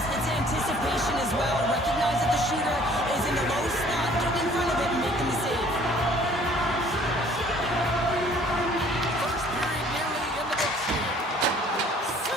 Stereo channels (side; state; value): both; normal; correlation 0.56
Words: It's anticipation as well. Recognize that the shooter is in the low slot. Get in front of it and making the save. First period nearly in the books here.